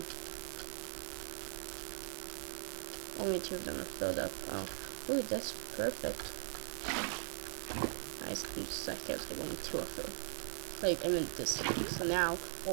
Only 2 of them are filled up. Oh, ooh, that's perfect. Nice. I'm just like, I was like, only 2 are filled. Like, I meant this thing. So now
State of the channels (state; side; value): silent; left; digital silence